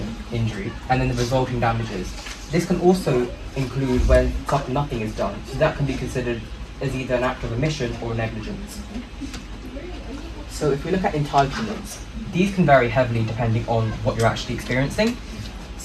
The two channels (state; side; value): identical; both; correlation 1.00